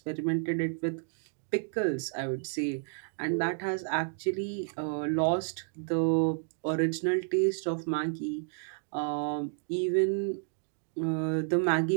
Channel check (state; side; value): silent; left; digital silence